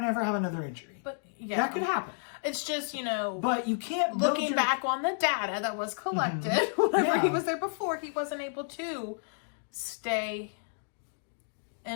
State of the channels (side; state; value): right; silent; digital silence